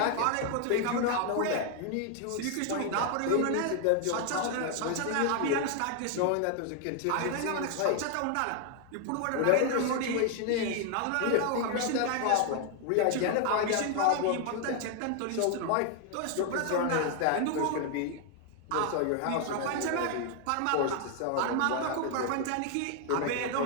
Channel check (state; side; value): different; both; correlation 0.00